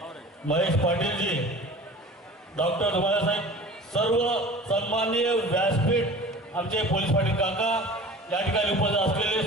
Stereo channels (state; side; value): normal; both; correlation 0.41